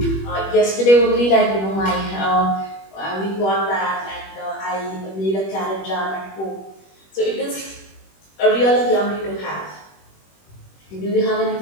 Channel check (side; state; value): right; late; 21 ms